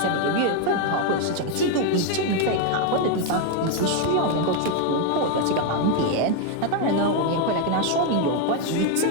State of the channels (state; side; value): different; both; correlation 0.01